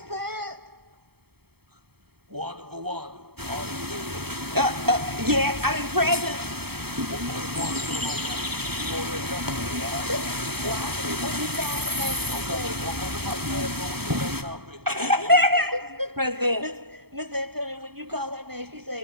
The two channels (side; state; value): left; late; 0.96 ms